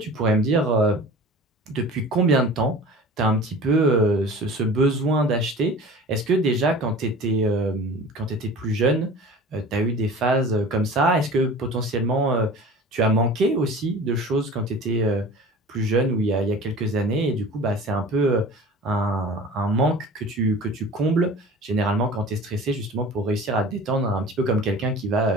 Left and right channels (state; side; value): normal; both; correlation 0.40